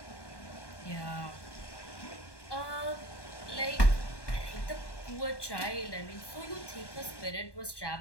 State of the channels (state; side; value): late; right; 1.2 ms